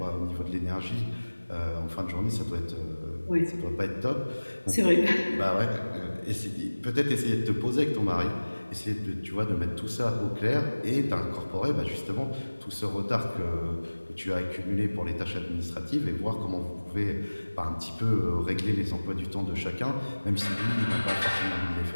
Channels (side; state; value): both; inverted; correlation -1.00